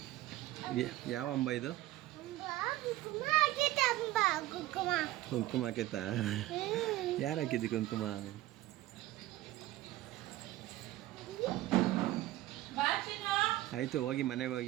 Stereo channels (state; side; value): quieter; left; 16.2 dB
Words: ಯಾವ ಅಂಬ ಇದು? ಕುಂಕುಮ ಹಾಕೈತಾ? ಯಾರು ಹಾಕಿದ್ದಿ ಕುಂಕುಮ? ಆಯಿತು, ಹೋಗಿ ಮನೆಗೆ